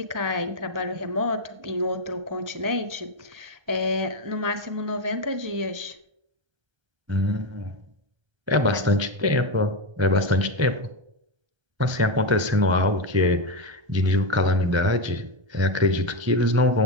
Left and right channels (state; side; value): late; left; 1.3 ms